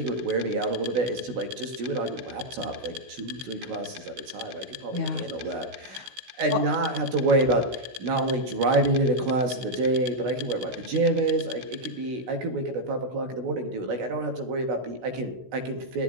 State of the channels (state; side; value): late; left; 16 ms